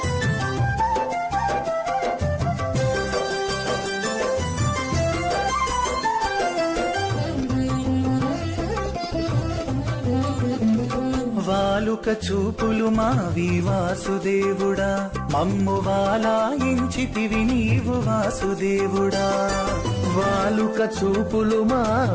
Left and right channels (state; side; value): identical; both; correlation 1.00